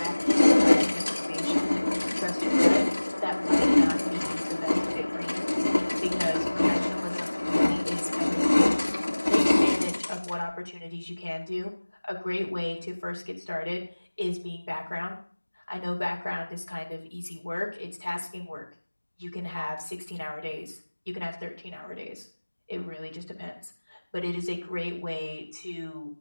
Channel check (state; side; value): inverted; both; correlation -1.00